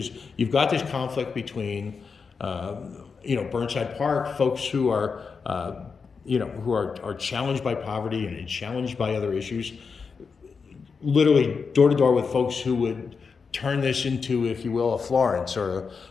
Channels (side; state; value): right; quieter; 5.3 dB